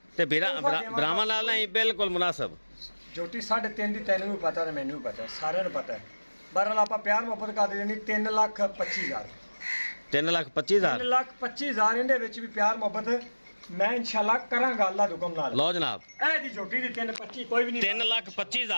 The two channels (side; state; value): both; inverted; correlation -1.00